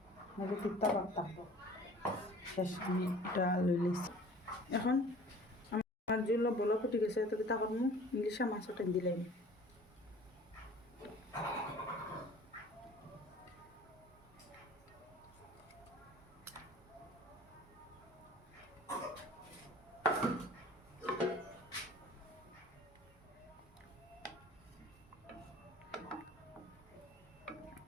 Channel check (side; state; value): both; normal; correlation 0.47